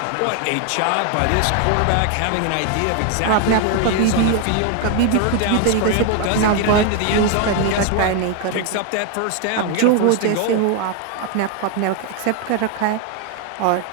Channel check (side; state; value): both; different; correlation 0.00